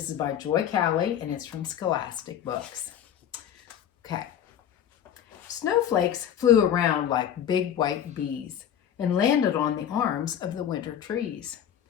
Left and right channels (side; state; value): right; quieter; 9.6 dB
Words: is by Joy Cowley and it's from Scholastic Books. Okay. Snowflakes flew around like big white bees and landed on the arms of the winter trees.